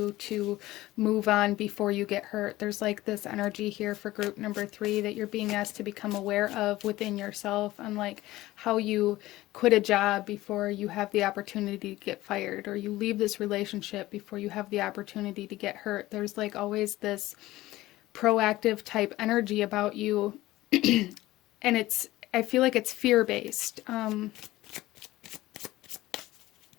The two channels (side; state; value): right; quieter; 17.1 dB